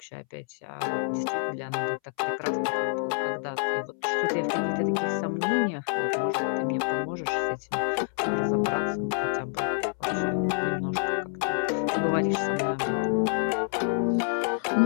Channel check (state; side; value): silent; right; 60 dB below the other